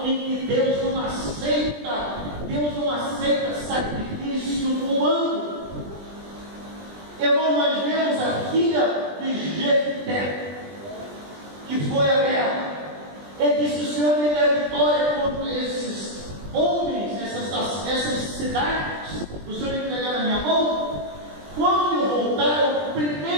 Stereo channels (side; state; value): left; late; 20 ms